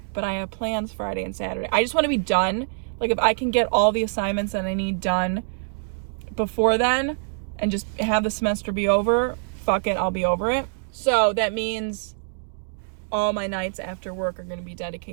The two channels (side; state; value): left; silent; digital silence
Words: but I have plans Friday and Saturday. I just want to be done. Like, if I can get all the assignments that I need done before then and just have the semester be over, fuck it, I'll be over it. So that means all my nights after work are going to be